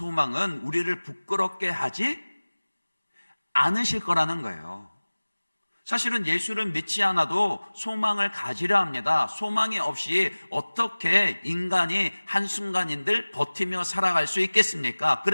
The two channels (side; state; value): both; inverted; correlation -1.00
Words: 우리를 부끄럽게 하지 않으실 거라는 거예요. 사실은 예수를 믿지 않아도 소망을 가지려 합니다. 소망이 없이 어떻게 인간이 한순간인들 버티며 살아갈 수 있겠습니까?